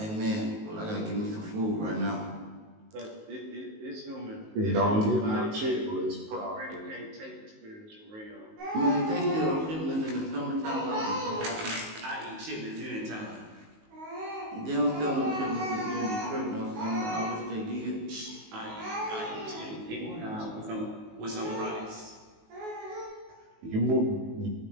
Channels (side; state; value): left; late; 19 ms